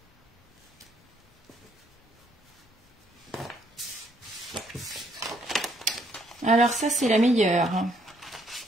Alors ça, c'est la meilleure.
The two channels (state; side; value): normal; both; correlation 0.69